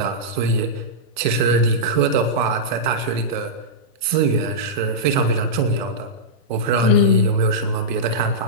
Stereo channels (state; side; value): normal; both; correlation -0.12